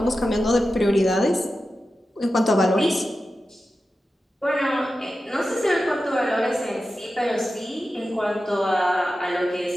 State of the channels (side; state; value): both; normal; correlation 0.92